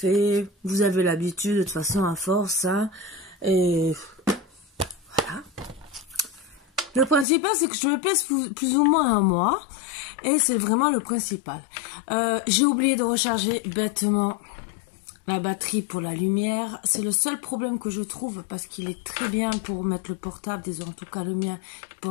Vous avez l'habitude de toute façon à force, hein. Et voilà. Le principal, c'est que je me pèse plus ou moins un mois. Et c'est vraiment le principal. J'ai oublié de recharger bêtement la batterie pour la lumière. C'est le seul problème que je trouve parce qu'il est très bien pour mettre le portable, disons en tout cas le mien,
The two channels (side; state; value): right; drops out; at 7.2 s